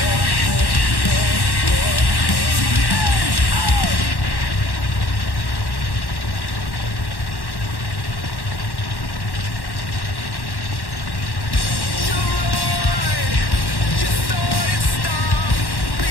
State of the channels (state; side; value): late; right; 1.1 ms